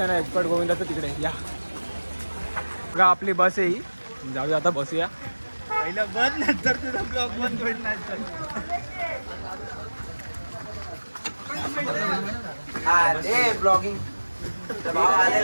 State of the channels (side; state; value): both; inverted; correlation -1.00